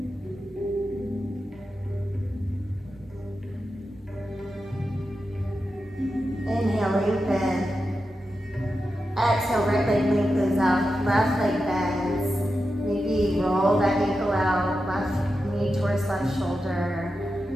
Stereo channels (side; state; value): both; normal; correlation 0.90